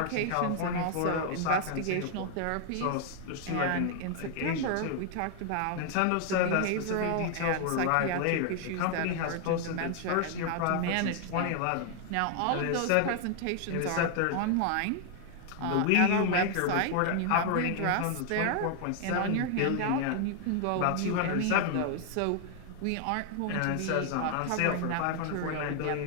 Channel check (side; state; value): both; different; correlation 0.00